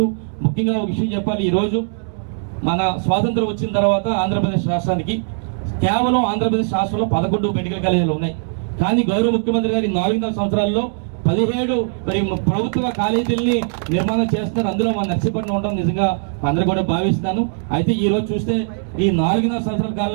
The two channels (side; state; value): left; silent; digital silence